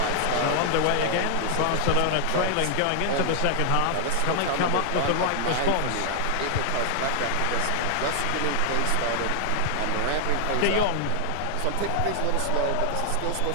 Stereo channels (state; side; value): different; both; correlation 0.00